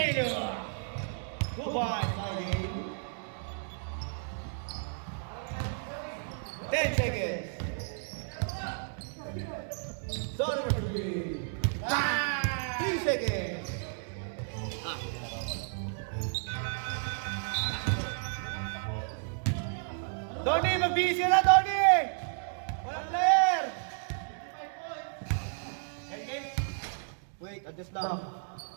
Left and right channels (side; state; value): left; silent; digital silence